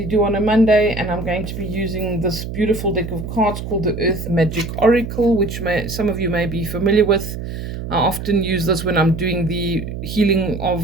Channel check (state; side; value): noise; right; hum, 7 dB below the sound